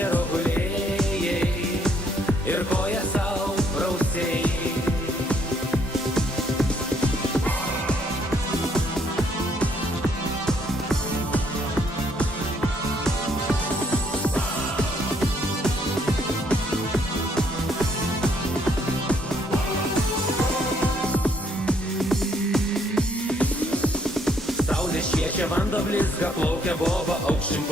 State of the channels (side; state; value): both; normal; correlation 0.68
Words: gulėjai ir koją sau prausėjai. Šviečia vanduo blizga, plaukia boba, aukščiau